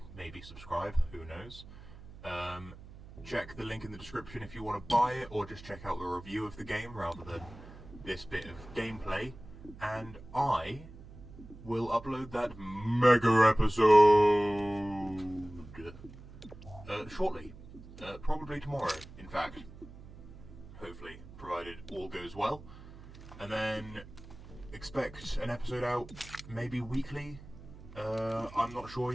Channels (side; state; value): right; noise; hum, 17 dB below the sound